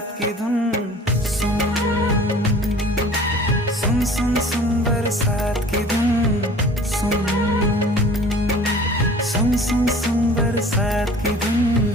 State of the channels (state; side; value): normal; both; correlation 0.47